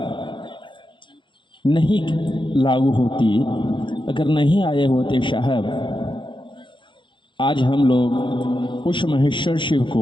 नहीं लागू होती, अगर नहीं आए होते साहब, आज हम लोग उस महेश्वर शिव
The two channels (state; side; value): late; right; 0.23 ms